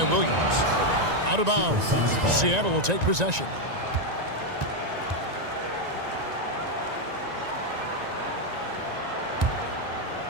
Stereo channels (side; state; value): left; late; 1.9 ms